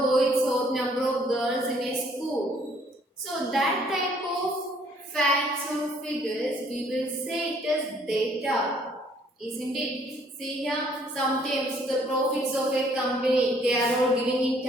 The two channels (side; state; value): both; normal; correlation 0.62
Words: or number of girls in a school. So that type of facts or figures we will say it as data, isn't it? See here, sometimes the profits of a company they are all giving in